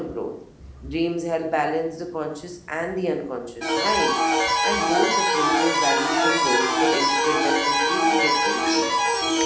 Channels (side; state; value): both; identical; correlation 1.00